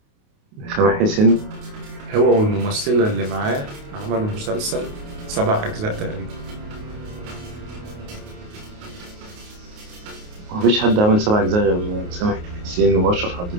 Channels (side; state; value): left; late; 28 ms